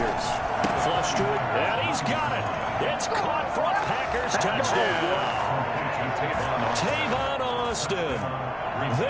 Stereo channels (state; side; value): identical; both; correlation 1.00